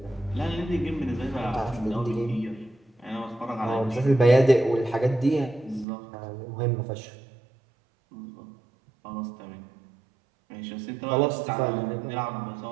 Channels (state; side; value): drops out; left; at 5.9 s